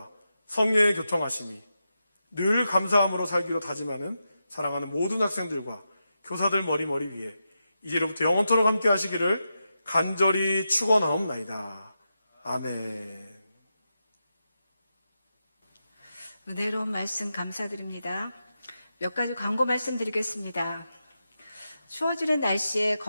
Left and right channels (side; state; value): both; inverted; correlation -0.88